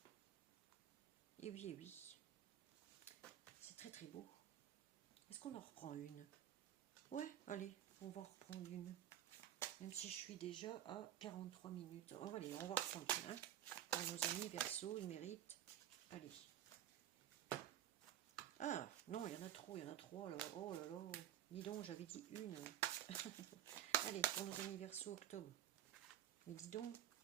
Et oui, et oui. C'est très très beau. Est-ce qu'on en reprend une ? Ouais, allez, on va reprendre une. Même si je suis déjà à 43 minutes. Oh, allez, on va reprendre une. Hein. Pour nos amis Verseau, ils méritent. Allez. Ah, non, il y en a trop, il y en a trois là. Oh là là. Dis donc, j'avais dit une. Allez, pour nos amis Verseau, octobre. Mais dis donc,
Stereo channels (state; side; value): quieter; left; 11.2 dB